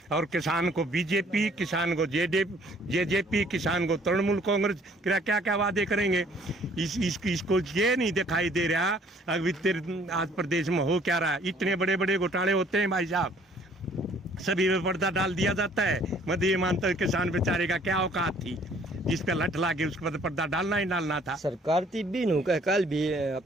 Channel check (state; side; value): normal; both; correlation 0.59